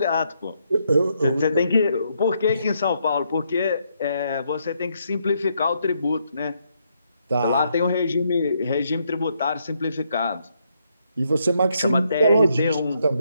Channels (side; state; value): both; inverted; correlation -0.76